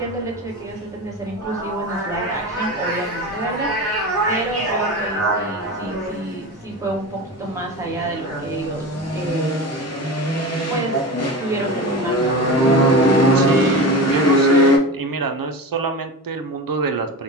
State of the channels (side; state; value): both; normal; correlation 0.27